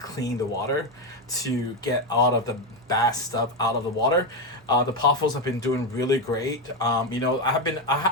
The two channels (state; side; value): normal; both; correlation 0.10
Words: the water, to get all of the bad stuff out of the water. The pothos have been doing really great. I